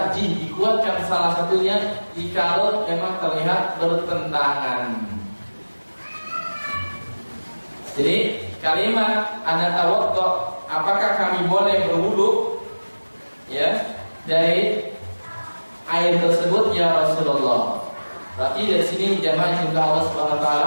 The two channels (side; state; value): both; inverted; correlation -1.00